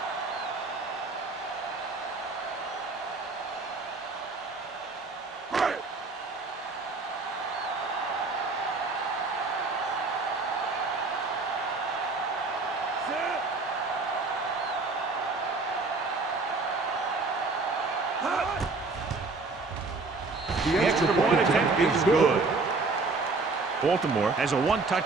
The extra point attempt is good. Baltimore has a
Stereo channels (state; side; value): quieter; left; 3.8 dB